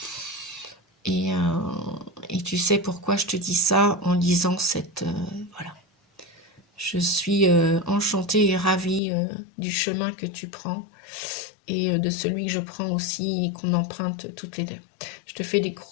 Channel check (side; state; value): right; drops out; at 9.0 s